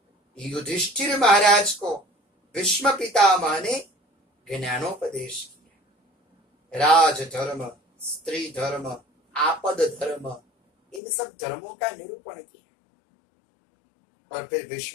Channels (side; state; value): right; drops out; at 11.0 s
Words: युधिष्ठिर महाराज को भीष्म पितामह ने ज्ञानोपदेश किया। राज धर्म, स्त्री धर्म, आपद धर्म, इन सब धर्मों का निरूपण किया। और फिर